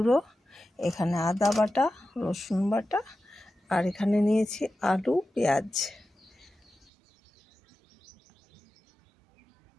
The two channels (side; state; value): left; drops out; at 6.9 s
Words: এখানে আদা বাটা, রসুন বাটা, আর এখানে নিয়েছি আলু, পেঁয়াজ।